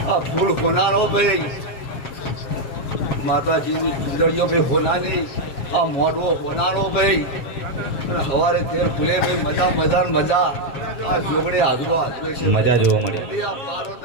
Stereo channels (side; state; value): right; late; 7.4 ms